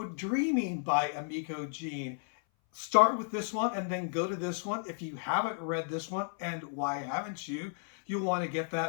Dreaming by Emiko Jean. Start with this one and then go to this one. If you haven't read this one, and why haven't you, you'll want to get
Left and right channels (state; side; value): silent; right; 56 dB below the other